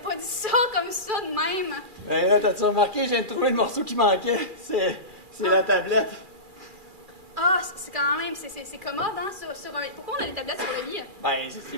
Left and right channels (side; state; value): left; late; 2.4 ms